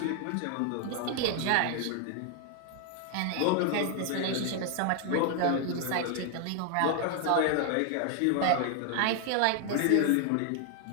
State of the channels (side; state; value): both; different; correlation 0.00